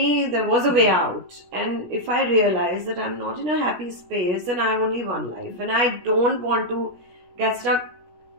there was a way out. And if I realize that I'm not in a happy space and I have only one life, and I don't want to get stuck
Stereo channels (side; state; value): left; late; 16 ms